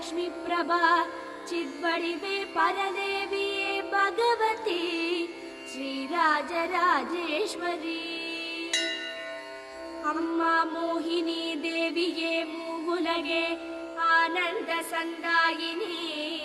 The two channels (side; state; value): both; identical; correlation 1.00